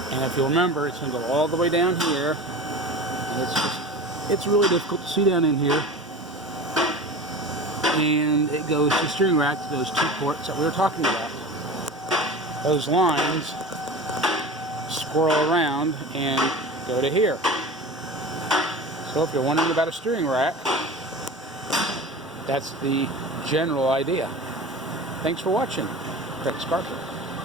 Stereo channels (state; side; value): normal; both; correlation 0.33